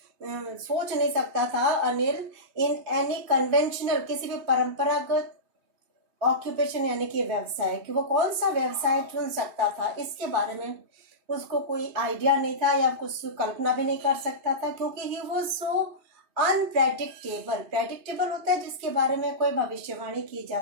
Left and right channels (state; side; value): late; left; 3.3 ms